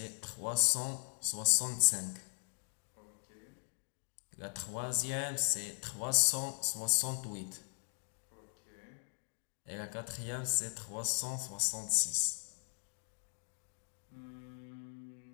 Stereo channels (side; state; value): right; silent; digital silence